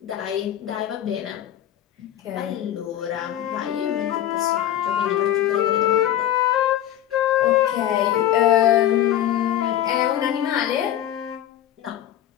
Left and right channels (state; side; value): quieter; right; 11.8 dB